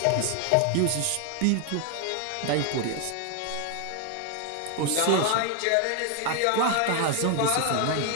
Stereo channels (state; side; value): different; both; correlation 0.01